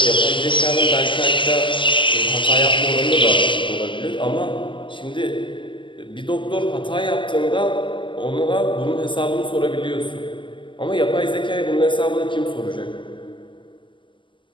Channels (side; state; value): right; late; 0.24 ms